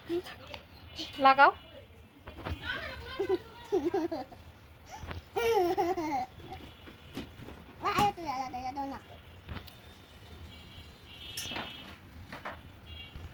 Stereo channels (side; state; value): both; identical; correlation 1.00